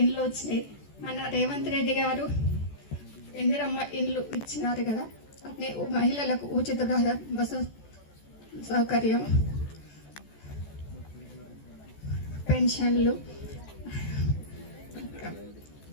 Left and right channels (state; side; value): late; right; 14 ms